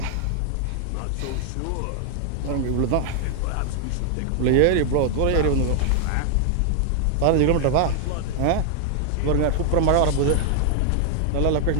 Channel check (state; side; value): different; both; correlation 0.00